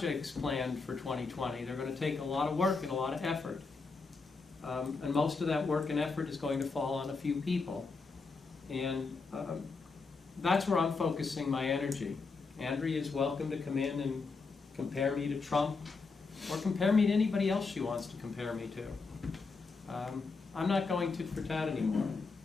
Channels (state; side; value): quieter; right; 4.4 dB